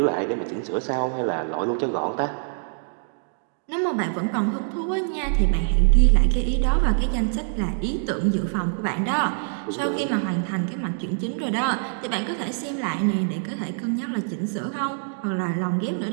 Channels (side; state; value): left; silent; digital silence